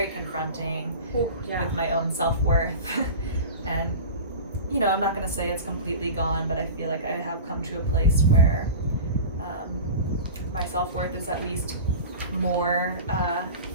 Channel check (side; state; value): both; inverted; correlation -0.33